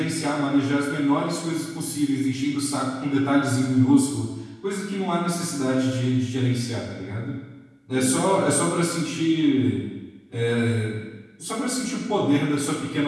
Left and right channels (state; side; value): identical; both; correlation 1.00